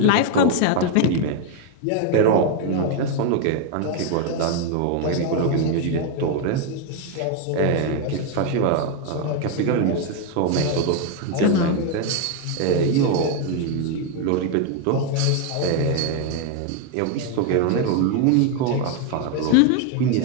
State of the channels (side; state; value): both; different; correlation 0.01